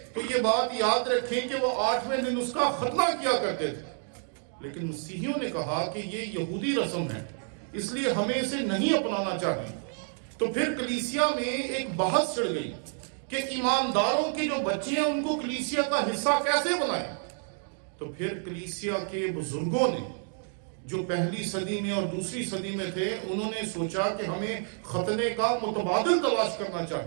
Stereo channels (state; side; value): silent; left; 58 dB below the other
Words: تو یہ بات یاد رکھیں کہ وہ 8ویں دن اس کا ختنہ کیا کرتے تھے. لیکن مسیحیوں نے کہا کہ یہ یہودی رسم ہے، اس لیے ہمیں اسے نہیں اپنانا چاہیے. تو پھر کلیسیا میں ایک بحث چڑھ گئی کہ ایمانداروں کے جو بچے ہیں ان کو کلیسیا کا حصہ کیسے بنائیں. تو پھر کلیسیا کے بزرگوں نے جو پہلی صدی میں اور دوسری صدی میں تھے انہوں نے سوچا کہ ہمیں ختنے کا متبادل تلاش کرنا